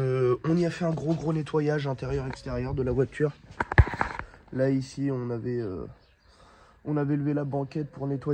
y a fait un gros nettoyage intérieur-extérieur de la voiture. Là ici on avait levé la banquette pour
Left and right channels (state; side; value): identical; both; correlation 1.00